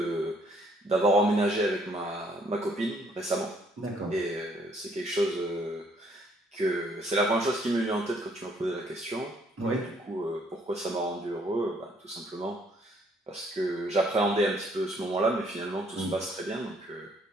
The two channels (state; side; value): normal; both; correlation 0.65